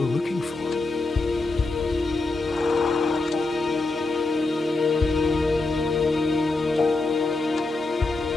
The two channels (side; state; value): right; quieter; 3.3 dB